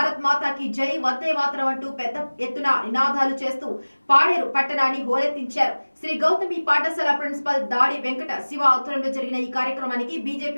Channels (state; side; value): inverted; both; correlation -1.00